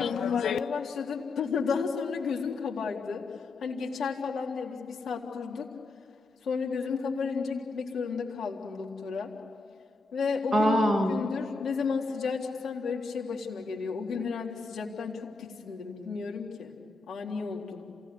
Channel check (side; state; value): right; quieter; 3.6 dB